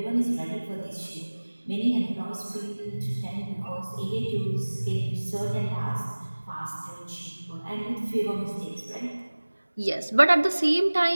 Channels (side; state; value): both; inverted; correlation -1.00